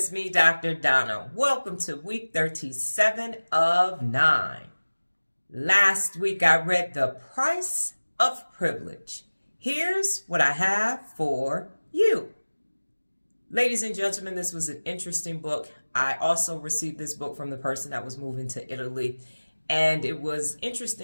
me, Dr. Donna. Welcome to week 37 of 9. Last week, I read The Price of Privilege. Here's what I have for you. Ladies and gentlemen, this was an interesting book. I also received this book from the person that was moving to Italy, and it was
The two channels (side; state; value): both; inverted; correlation -1.00